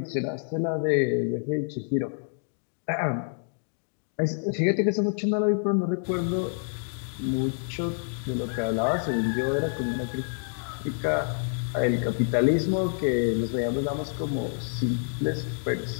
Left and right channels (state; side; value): silent; right; digital silence